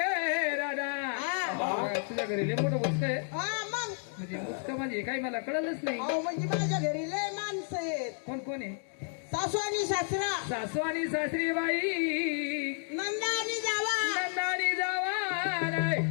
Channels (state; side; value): silent; right; 57 dB below the other